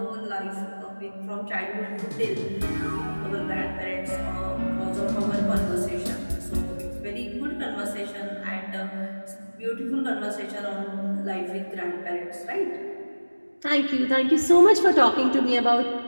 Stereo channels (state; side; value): inverted; both; correlation -1.00